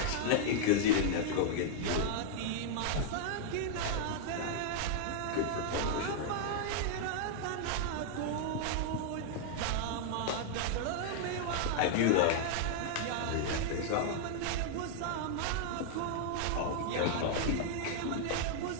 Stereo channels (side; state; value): both; different; correlation -0.01